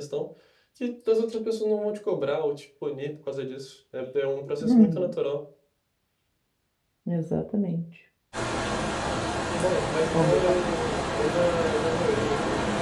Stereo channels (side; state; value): both; identical; correlation 1.00